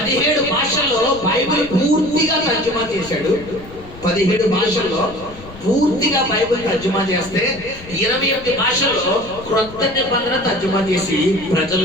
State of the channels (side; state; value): left; noise; rumble, 17 dB below the sound